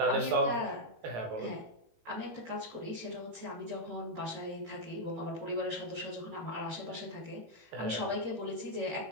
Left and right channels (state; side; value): late; left; 18 ms